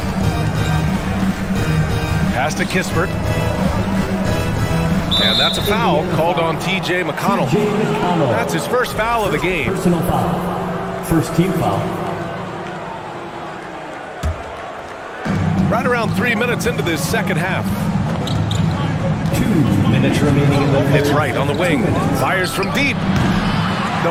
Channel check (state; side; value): identical; both; correlation 1.00